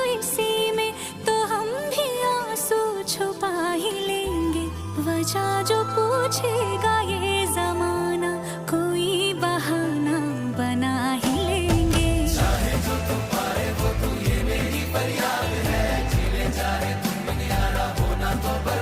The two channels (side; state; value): both; identical; correlation 1.00